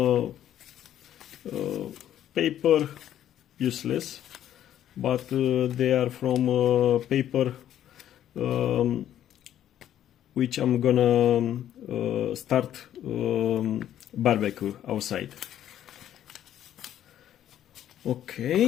paper, useless, but they are from paper which I'm gonna start barbecue outside.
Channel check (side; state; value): right; quieter; 11.2 dB